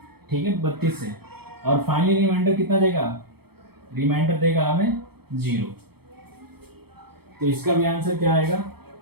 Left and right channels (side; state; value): left; late; 0.96 ms